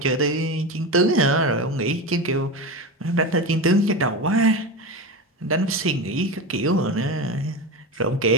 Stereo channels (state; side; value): normal; both; correlation 0.22